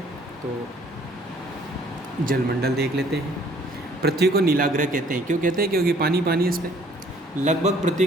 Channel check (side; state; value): both; normal; correlation 0.58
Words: तो जलमंडल देख लेते हैं। पृथ्वी को नीला ग्रह कहते हैं। क्यों कहते हैं? क्योंकि पानी पानी है इस पर। लगभग